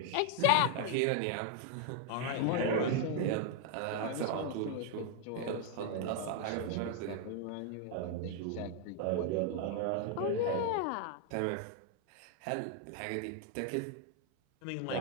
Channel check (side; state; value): both; different; correlation 0.00